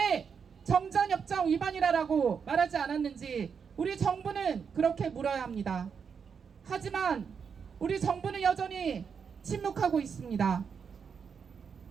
정전협정 위반이라고 말하지 않았는지 우리 정부는 그렇게 물어야 합니다. 하지만 우리 정부는 여전히 침묵하고 있습니다.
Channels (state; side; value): quieter; left; 6.5 dB